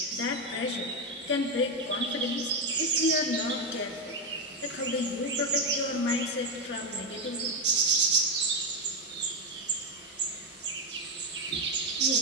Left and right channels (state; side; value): normal; both; correlation 0.07